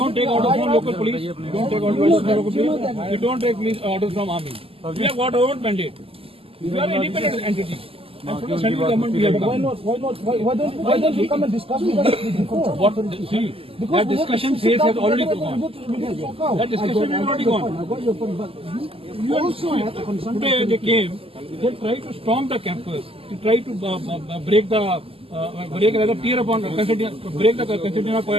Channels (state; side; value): late; left; 0.27 ms